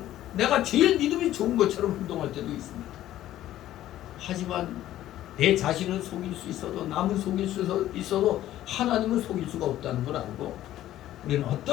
내가 제일 믿음이 좋은 것처럼 행동할 때도 있습니다. 하지만 내 자신은 속일 수 있어도 남은 속일 수 있어도 하나님은 속일 수가 없다는 걸 알고 우리는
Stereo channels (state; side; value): quieter; right; 13.4 dB